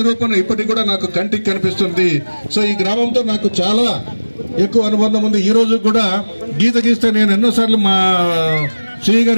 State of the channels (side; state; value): both; inverted; correlation -1.00